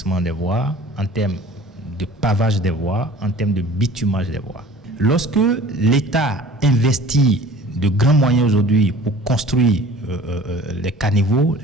des voies, en termes de pavage des voies, en termes de bitumage des voies. Lorsque l'État investit de grands moyens aujourd'hui pour construire les caniveaux,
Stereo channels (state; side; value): normal; both; correlation 0.46